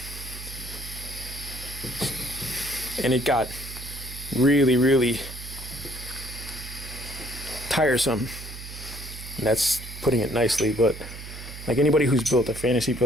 And it got really tiresome. And that's putting it nicely, but like anybody who's built a fantasy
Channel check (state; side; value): noise; right; hum, 12 dB below the sound